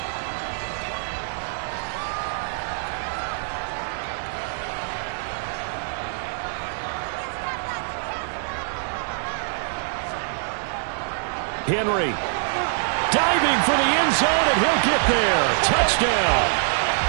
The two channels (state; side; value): silent; left; 62 dB below the other